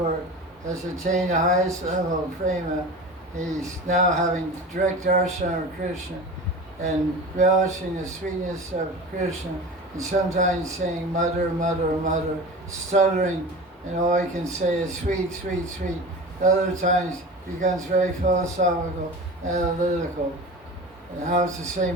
has attained the highest level of prema? He's now having direct darshan of Krishna and relishing the sweetness of Krishna, and sometimes saying mother, mother, mother, stuttering, and all he can say is sweet, sweet, sweet. Other times he becomes very philosophical, analytical. And how does the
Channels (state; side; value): normal; both; correlation 0.33